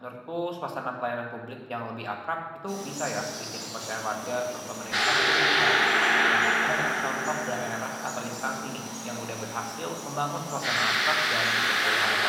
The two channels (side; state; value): both; identical; correlation 1.00